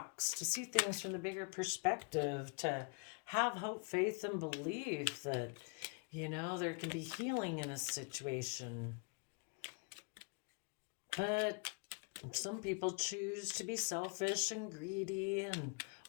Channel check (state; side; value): quieter; right; 35.6 dB